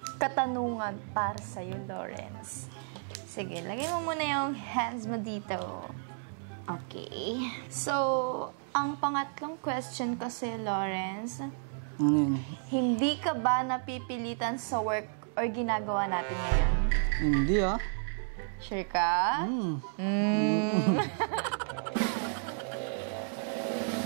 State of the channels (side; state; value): left; silent; digital silence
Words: katanungan para sa'yo, Lawrence. Sige, lagay mo muna yung hands mo dito. Okay. So, Ang pangatlong question kasi, Lawrence, Ano yun? hindi ka ba napipilitan sa work or ginagawa natin ngayon? Hindi ah. Sure ka?